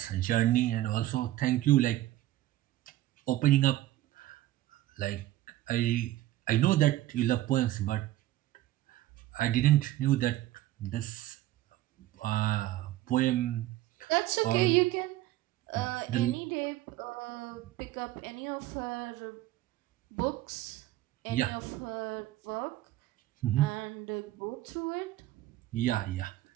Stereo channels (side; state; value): left; quieter; 15.3 dB